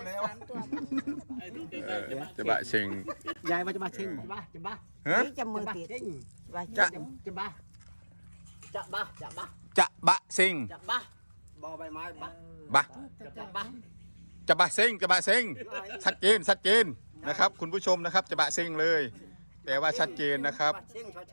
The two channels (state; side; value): inverted; both; correlation -1.00